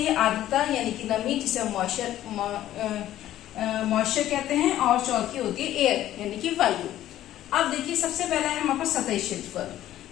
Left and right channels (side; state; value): right; quieter; 13.1 dB